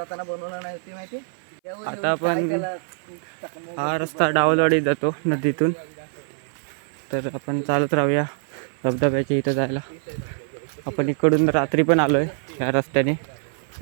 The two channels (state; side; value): silent; left; 57 dB below the other